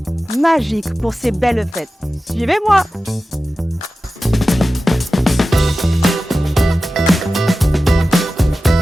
magiques pour ces belles fêtes. Suivez-moi!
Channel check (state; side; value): normal; both; correlation 0.95